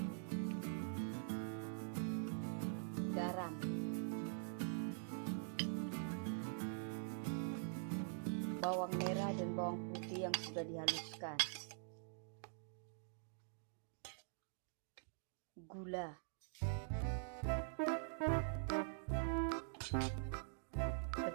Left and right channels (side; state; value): left; silent; digital silence